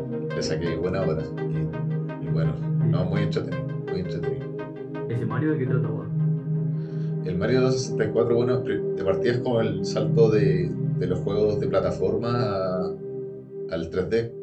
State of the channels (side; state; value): both; identical; correlation 1.00